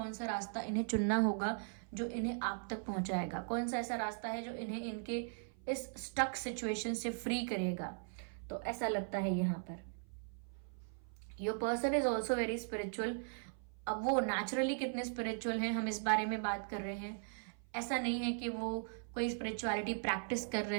सा रास्ता इन्हें चुनना होगा जो इन्हें आप तक पहुंचाएगा, कौन सा ऐसा रास्ता है जो इन्हें इनके इस स्टक सिचुएशन से फ्री करेगा। तो ऐसा लगता है यहाँ per your person is also very spiritual. अब वो नेचुरली कितने स्पिरिचुअल हैं, हम इस बारे में बात कर रहे हैं। ऐसा नहीं है कि वो कोई स्पिरिचुअलिटी प्रैक्टिस कर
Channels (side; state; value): left; silent; 52 dB below the other